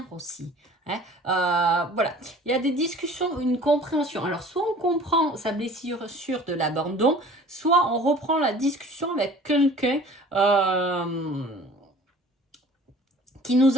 aussi. Hein. Voilà, il y a des discussions, une compréhension. Alors, soit on comprend sa blessure de l'abandon, soit on reprend la discussion avec quelqu'un qui nous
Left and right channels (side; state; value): both; normal; correlation 0.47